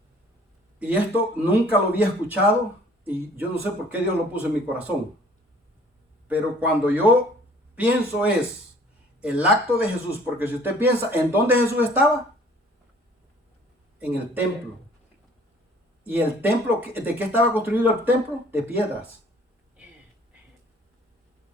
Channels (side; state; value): both; normal; correlation 0.54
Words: Y esto nunca lo había escuchado y yo no sé por qué Dios lo puso en mi corazón. Pero cuando yo pienso es el acto de Jesús, porque si usted piensa, ¿en dónde Jesús estaba? En el templo. ¿Y el templo, de qué estaba construido el templo? De piedras.